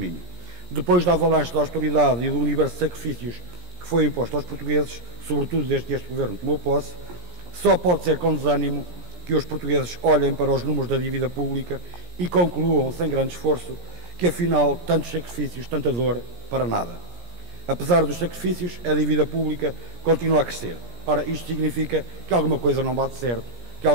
Depois da avalanche da austeridade e do universo de sacrifícios que foi imposto aos portugueses, sobretudo desde que este Governo tomou posse, só pode ser com desânimo que os portugueses olhem para os números da dívida pública e concluam, sem grande esforço, que afinal tantos sacrifícios, tanta dor, para nada. Apesar dos sacrifícios, a dívida pública continua a crescer. Ora, isto significa que alguma coisa não bate certo, que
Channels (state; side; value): late; left; 17 ms